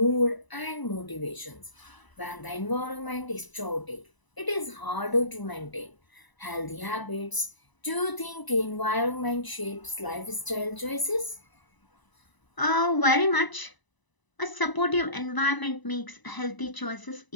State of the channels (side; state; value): right; late; 1.0 ms